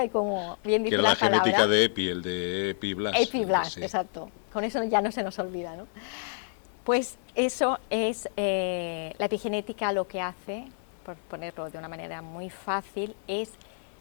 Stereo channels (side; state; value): right; silent; 59 dB below the other